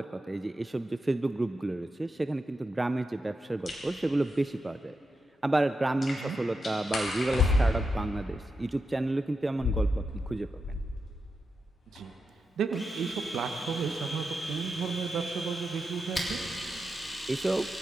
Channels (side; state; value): both; normal; correlation 0.88